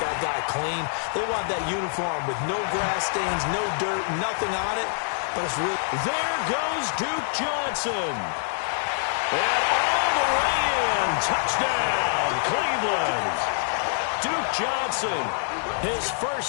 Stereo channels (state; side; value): silent; right; digital silence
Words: guy clean. They want that uniform with no grass stains, no dirt, nothing on it. But it's really... There goes Duke Johnson. And all the way in. Touchdown, Cleveland. Duke Johnson, his